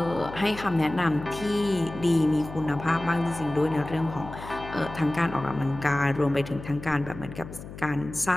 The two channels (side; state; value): left; noise; hum, 13 dB below the sound